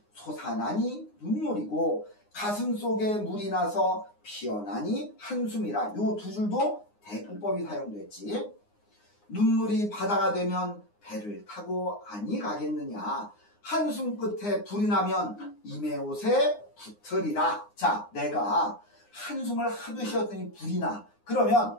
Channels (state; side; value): late; right; 9.7 ms